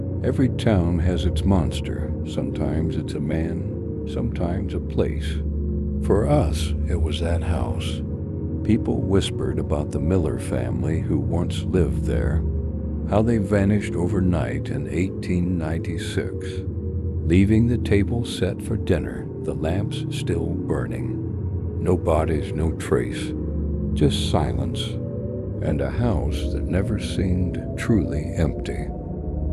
Every town has its monster. Sometimes it's a man, sometimes a place. For us, it was that house. People whispered about the Miller family who once lived there, how they vanished overnight in 1896, leaving the table set for dinner, the lamps still burning. No bodies, no trace, just silence, and a house that never seemed truly empty.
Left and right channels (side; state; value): both; identical; correlation 1.00